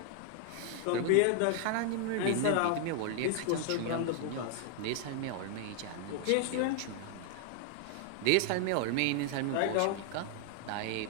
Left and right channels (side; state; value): both; different; correlation 0.00